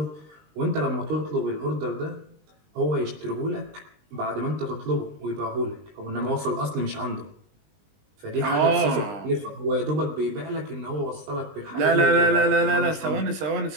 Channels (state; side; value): late; left; 20 ms